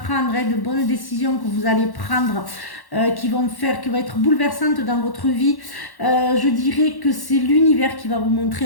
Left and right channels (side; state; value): right; late; 1.1 ms